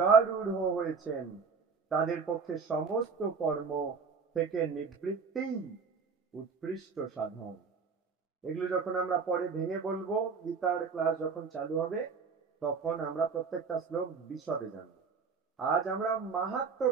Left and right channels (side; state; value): left; quieter; 5.3 dB